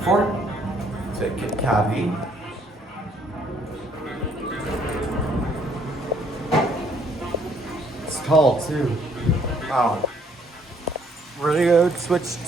4, take it cavity. It's tall too. Wow. We're gonna go switch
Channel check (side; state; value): both; normal; correlation 0.65